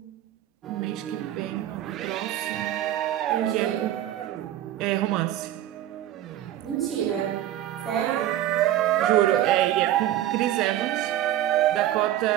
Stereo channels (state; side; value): quieter; left; 12.9 dB